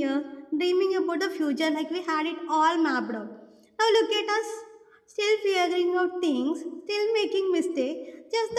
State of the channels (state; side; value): identical; both; correlation 1.00